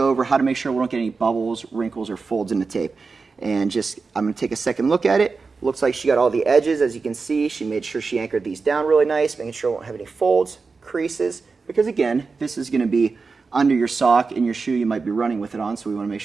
over how to make sure we don't get any bubbles, wrinkles, or folds in the tape. And just, I'm going to take a second look at it. Looks like she got all the edges, as you can see. She made sure she anchored these down really nice, making sure we won't have any folds, creases, because again, this is going to be under your sock in your shoe. You might be running with it on, so we want to make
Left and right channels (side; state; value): left; quieter; 4.5 dB